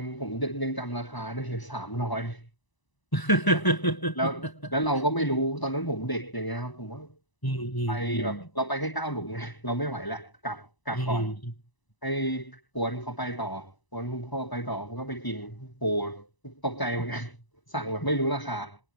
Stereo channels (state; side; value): late; right; 1.0 ms